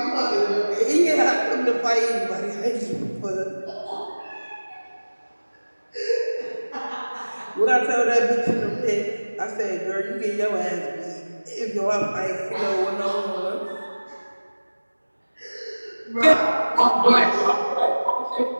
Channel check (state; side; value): inverted; both; correlation -1.00